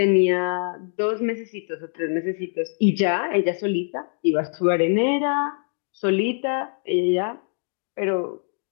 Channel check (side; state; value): right; silent; digital silence